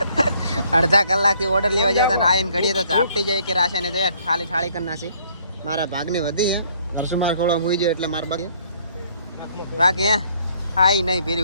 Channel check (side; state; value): both; inverted; correlation -0.64